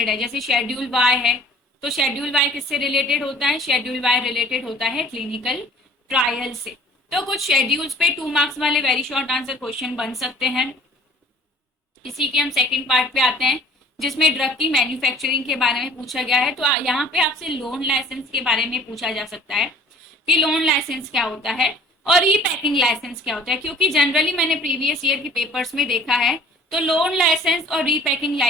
है। जैसे शेड्यूल वाई है, तो शेड्यूल वाई किससे रिलेटेड होता है, शेड्यूल वाई रिलेटेड होता है क्लिनिकल ट्रायल से। तो कुछ शेड्यूल्स पे 2 मार्क्स वाले वेरी शॉर्ट आंसर क्वेश्चन बन सकते हैं। इसी के हम सेकंड पार्ट पे आते हैं, जिसमें ड्रग की मैन्युफैक्चरिंग के बारे में पूछा गया है। तो यहाँ पे आपसे लोन लाइसेंस के बारे में पूछा जा सकता है कि लोन लाइसेंस क्या होता है और ई पैकिंग लाइसेंस क्या होता है, क्योंकि जनरली मैंने प्रीवियस ईयर के पेपर्स में देखा है तो लोन लाइसेंस और री पैकिंग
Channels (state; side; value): normal; both; correlation 0.51